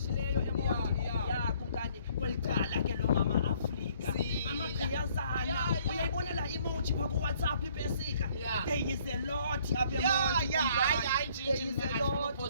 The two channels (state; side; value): inverted; both; correlation -0.62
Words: eMonti ya kumkani kwelicala ke lo mama Afrika amagqiyazana uyayibona la emoji pha ku WhatsApp ipesika there is a lot apha eMonti hayi njinji